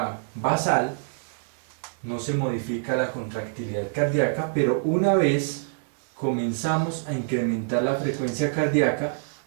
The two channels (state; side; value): silent; left; digital silence